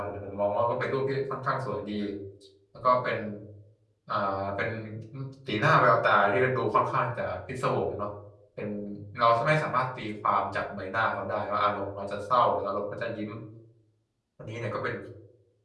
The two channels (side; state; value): both; identical; correlation 1.00